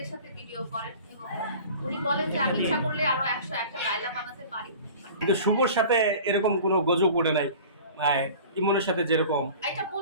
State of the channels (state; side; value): inverted; both; correlation -0.41